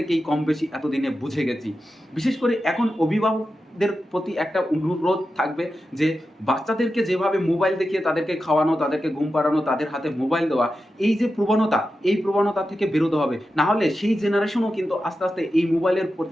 কম বেশি এতদিনে বুঝে গেছি। বিশেষ করে এখন অভিভাবকদের প্রতি একটা অনুরোধ থাকবে যে বাচ্চাদেরকে যেভাবে মোবাইল দেখিয়ে তাদেরকে খাওয়ানো, তাদেরকে ঘুম পাড়ানো, তাদের হাতে মোবাইল দেওয়া, এই যে প্রবণতা, এই প্রবণতা থেকে বেরোতে হবে। না হলে সেই জেনারেশনও কিন্তু আস্তে আস্তে এই মোবাইলের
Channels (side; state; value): both; normal; correlation 0.91